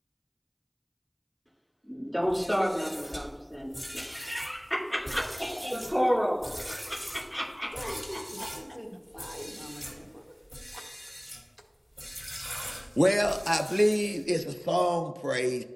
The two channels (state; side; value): identical; both; correlation 1.00